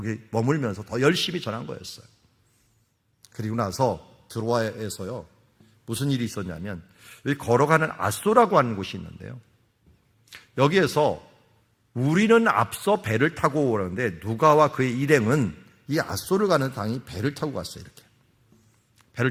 머물면서 더 열심히 전한 거였어요. 그리고 나서 드로아에서요 무슨 일이 있었냐면, 여기 걸어가는 앗소라고 하는 곳이 있는데요, 여기에서 우리는 앞서 배를 타고 오는데 누가와 그의 일행은 이 앗소를 가는 당이 배를 타고 갔어요. 이렇게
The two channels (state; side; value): identical; both; correlation 1.00